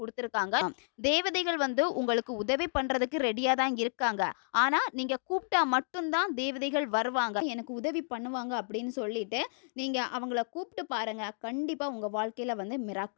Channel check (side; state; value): right; silent; digital silence